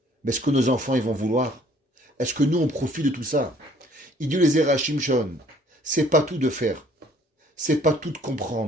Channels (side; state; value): both; normal; correlation 0.59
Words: Mais est-ce que nos enfants ils vont vouloir? Est-ce que nous on profite de tout ça? Il dit les Zerachim Shon, c'est pas tout de faire. C'est pas tout de